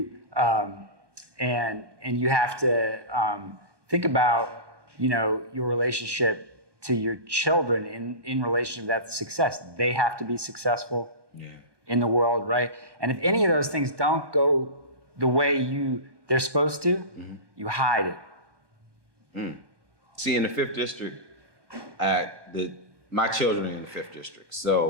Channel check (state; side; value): late; left; 1.2 ms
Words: and you have to think about, your relationship to your children in relation to that success. They have to be successful in the world, right? And if any of those things don't go the way they're supposed to, you hide it. See, in the 5th district, my children are in the 5th district.